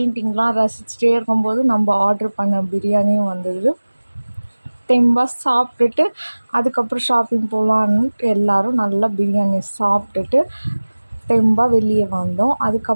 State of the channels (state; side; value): inverted; both; correlation -1.00